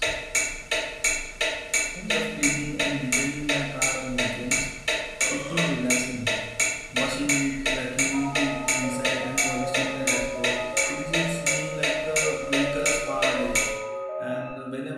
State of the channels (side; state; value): both; identical; correlation 1.00